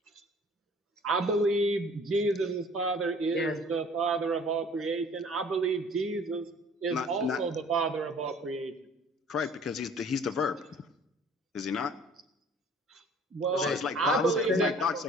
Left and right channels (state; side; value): normal; both; correlation 0.51